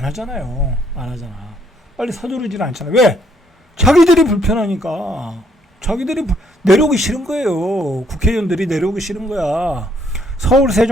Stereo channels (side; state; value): both; normal; correlation 0.69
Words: 하잖아요. 안 하잖아. 빨리 서두르지는 않잖아. 왜? 자기들이 불편하니까. 자기들이 내려오기 싫은 거예요. 국회의원들이 내려오기 싫은 거야. 서울